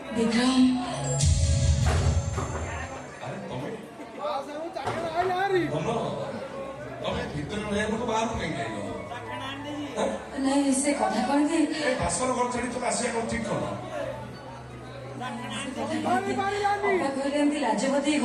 ବିକ୍ରମ ଆରେ ତମେ ତମେ ଭିତରେ ରହିବାକୁ ବାହାରକୁ କାହିଁକି ଆଇଲ? ନାଇଁ ସେ କଥା କଣ କି ଏ ବାସର ଘର ଛାଡି ତମେ ଆସିବା କଣ ଠିକ କଲ? ଘରେ ଏମିତି ଲାଜପତି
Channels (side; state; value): both; identical; correlation 1.00